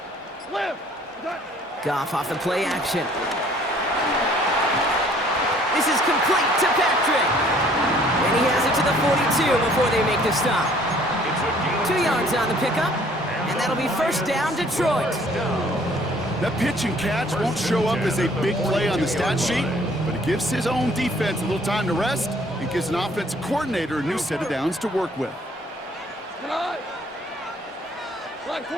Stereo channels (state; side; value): normal; both; correlation 0.58